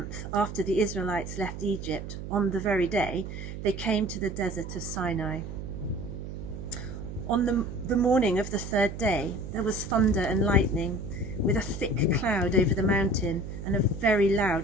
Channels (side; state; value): right; noise; hum, 8 dB below the sound